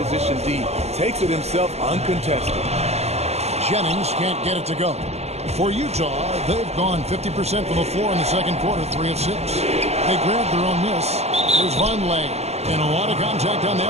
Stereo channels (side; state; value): left; late; 0.31 ms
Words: D. Takes it himself uncontested. Jennings can't get it to go. For Utah, they've gone 50% from the floor in the second quarter, 3 of 6. They grabbed their own miss. There's Vonleh. And a lot of contact on